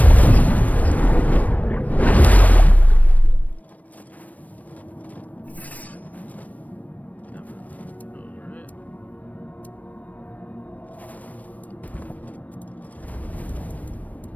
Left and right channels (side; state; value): right; late; 0.072 ms